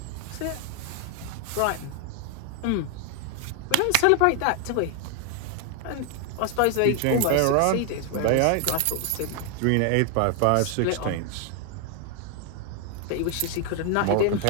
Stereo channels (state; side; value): different; both; correlation 0.00